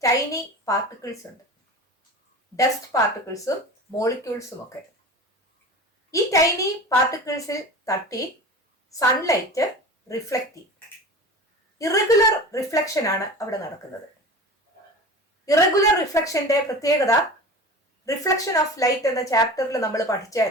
ടൈനി പാർട്ടിക്കിൾസ് ഉണ്ട്, ഡസ്റ്റ് പാർട്ടിക്കിൾസും മോളിക്യൂൾസും ഒക്കെ. ഈ ടൈനി പാർട്ടിക്കിൾസിൽ തട്ടി സൺലൈറ്റ് റിഫ്ലക്റ്റ് ചെയ്യും. ഇറഗുലർ റിഫ്ലക്ഷൻ ആണ് അവിടെ നടക്കുന്നത്. ഇറഗുലർ റിഫ്ലക്ഷന്റെ പ്രത്യേകത റിഫ്ലക്ഷൻ ഓഫ് ലൈറ്റ് എന്ന ചാപ്റ്ററിൽ നമ്മൾ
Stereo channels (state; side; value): normal; both; correlation 0.34